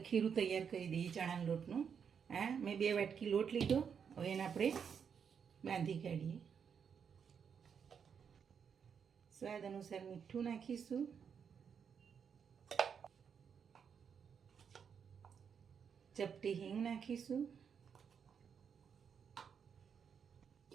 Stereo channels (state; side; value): quieter; left; 7.0 dB